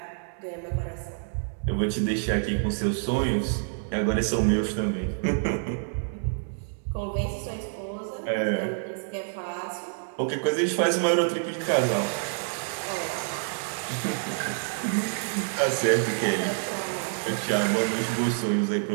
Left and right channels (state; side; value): silent; left; digital silence